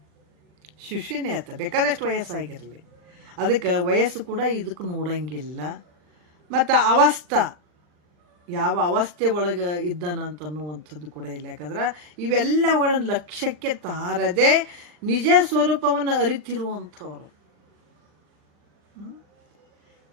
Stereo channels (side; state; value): left; late; 39 ms